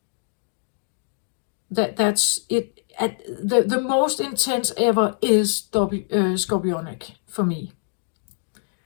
That's it. The most intense ever is scorpionic for me.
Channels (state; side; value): silent; right; digital silence